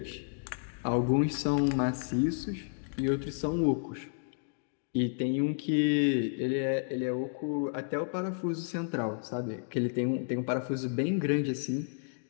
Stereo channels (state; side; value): silent; right; digital silence